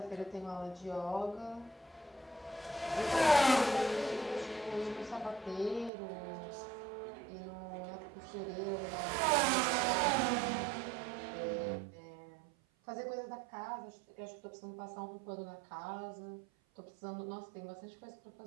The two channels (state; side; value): drops out; left; at 5.9 s